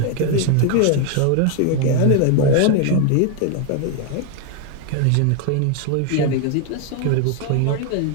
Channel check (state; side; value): different; both; correlation 0.01